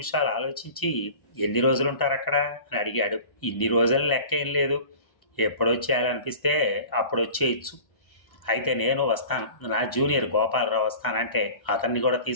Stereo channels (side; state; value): right; late; 1.0 ms